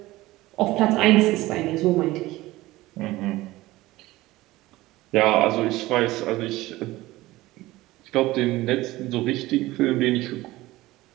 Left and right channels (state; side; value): quieter; left; 18.2 dB